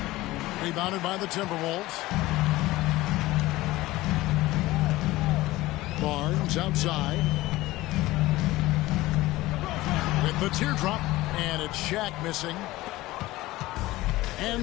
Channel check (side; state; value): right; quieter; 18.2 dB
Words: Rebounded by the Timberwolves. Barnes outside. With the teardrop, and it's Shaq missing.